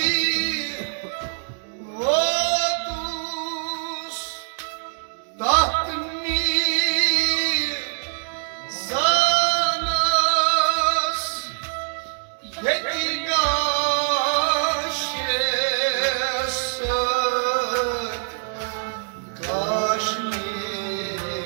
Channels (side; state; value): left; silent; digital silence